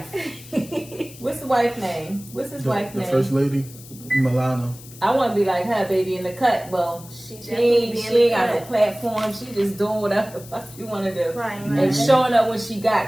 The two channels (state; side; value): noise; left; hiss, 19 dB below the sound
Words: What's the wife's name? What's his wife's The name? first lady, Milana. I want to be like her, baby, in the cut. Well, she ain't got no platform. She just doing whatever the fuck you want to do. Right, And right. showing up when she